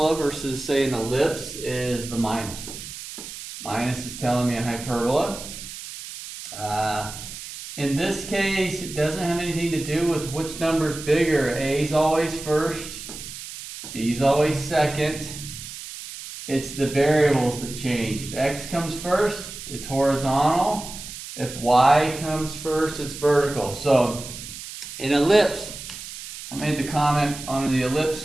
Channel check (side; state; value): right; noise; hiss, 11 dB below the sound